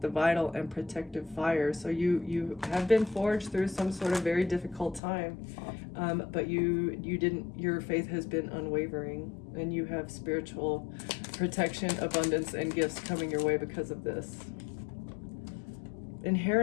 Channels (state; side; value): drops out; right; at 5.0 s